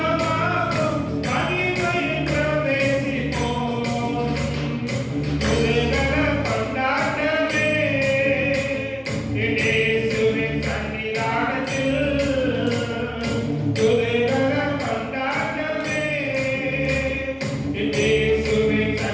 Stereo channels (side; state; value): both; identical; correlation 1.00